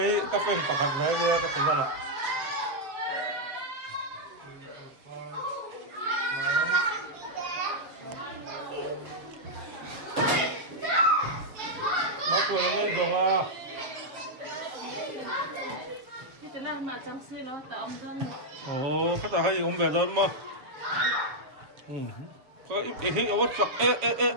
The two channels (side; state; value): left; late; 7.0 ms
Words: các phần phẳng hẳn đấy nha các phần ra lại Bác cười nó lên rồi à cái là mà chăm sóc nó tạo ông dân. Ồ, các bạn hay ôm về rồi mà. Có ít ở vật sặc ê.